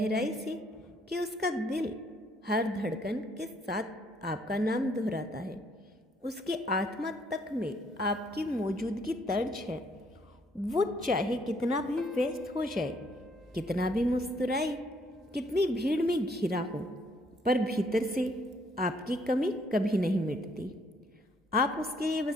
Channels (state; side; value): normal; both; correlation 0.67